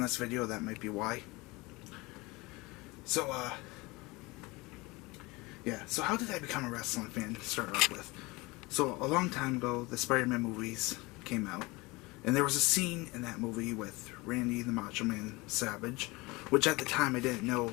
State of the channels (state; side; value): quieter; right; 23.5 dB